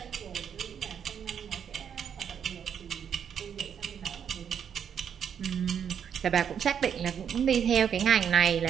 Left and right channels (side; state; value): left; quieter; 8.0 dB